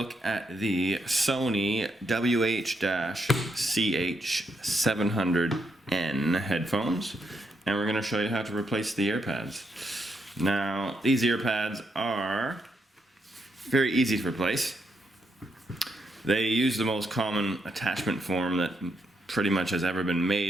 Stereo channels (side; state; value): both; normal; correlation 0.79